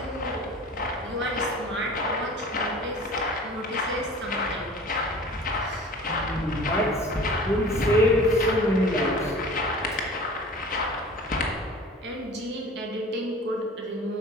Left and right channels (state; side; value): normal; both; correlation 0.41